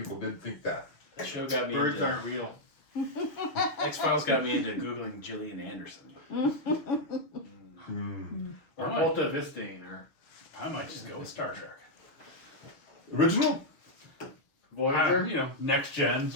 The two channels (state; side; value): late; right; 6.4 ms